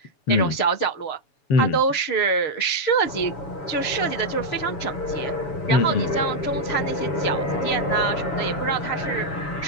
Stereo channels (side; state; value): right; late; 7.0 ms